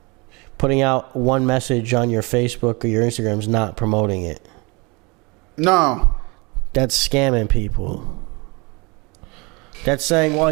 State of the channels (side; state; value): left; quieter; 27.8 dB